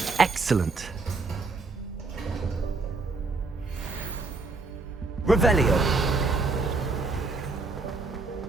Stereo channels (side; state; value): left; quieter; 3.8 dB